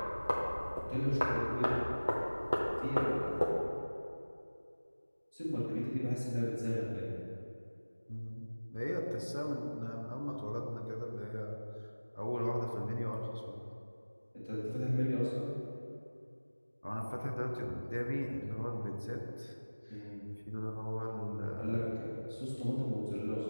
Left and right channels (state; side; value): inverted; both; correlation -1.00